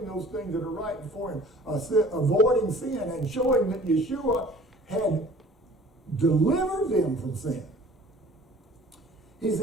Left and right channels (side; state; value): both; normal; correlation 0.48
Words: those things that are right before Him, avoiding sin and showing that Yeshua had delivered them from sin. He